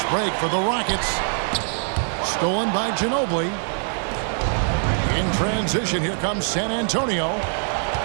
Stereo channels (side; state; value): left; silent; 58 dB below the other